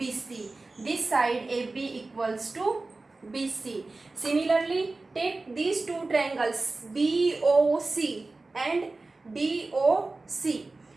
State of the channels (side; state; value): left; quieter; 3.4 dB